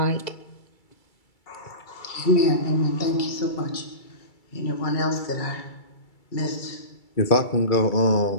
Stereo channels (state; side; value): late; right; 2.3 ms